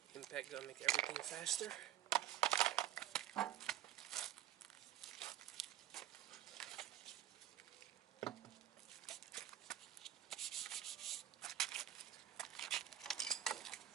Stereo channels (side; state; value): left; quieter; 12.3 dB